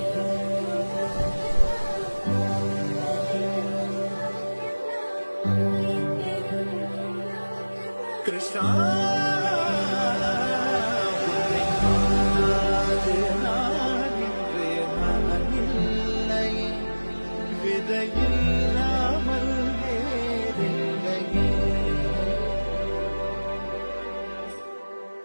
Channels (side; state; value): both; inverted; correlation -1.00